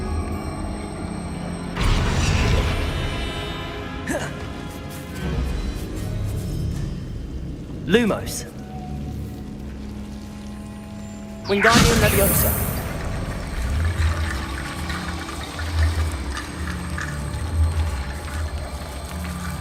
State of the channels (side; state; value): both; identical; correlation 1.00